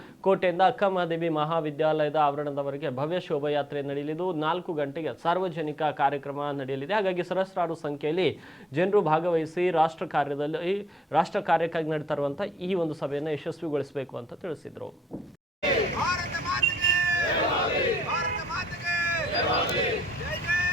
ಕೋಟೆಯಿಂದ ಅಕ್ಕಮಹಾದೇವಿ ಮಹಾವಿದ್ಯಾಲಯದ ಆವರಣದವರೆಗೆ ಭವ್ಯ ಶೋಭಾಯಾತ್ರೆ ನಡೆಯಲಿದ್ದು, 4 ಗಂಟೆಗೆ ಸಾರ್ವಜನಿಕ ಕಾರ್ಯಕ್ರಮ ನಡೆಯಲಿದೆ. ಹಾಗಾಗಿ ಸಹಸ್ರಾರು ಸಂಖ್ಯೆಯಲ್ಲಿ ಜನರು ಭಾಗವಹಿಸಿ ರಾಷ್ಟ್ರ ಕಾರ್ಯಕ್ಕಾಗಿ ನಡೀತಾ ಇರುವಂತಹ ಈ ಒಂದು ಸಭೆಯನ್ನು ಯಶಸ್ವಿಗೊಳಿಸಬೇಕು ಅಂತ ತಿಳಿಸಿದರು.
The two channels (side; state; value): both; normal; correlation 0.76